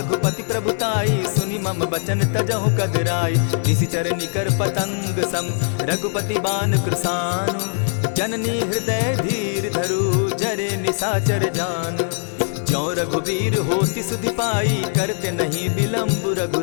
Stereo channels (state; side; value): silent; right; digital silence